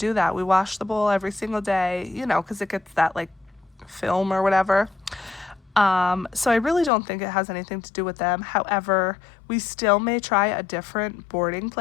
that. We wash the bowl every single day, you know, because it gets that like film or whatever. So I really don't think it has anything to do with them. However, we still may try a different boarding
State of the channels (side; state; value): right; drops out; at 6.9 s